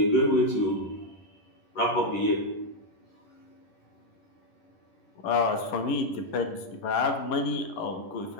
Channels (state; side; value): late; right; 11 ms